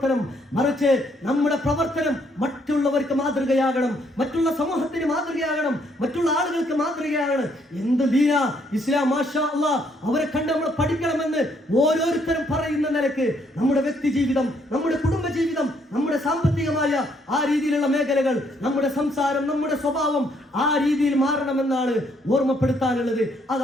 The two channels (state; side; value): normal; both; correlation 0.70